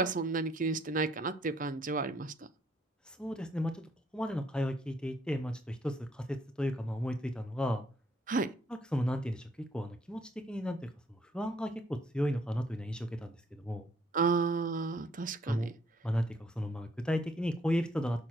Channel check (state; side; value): normal; both; correlation 0.67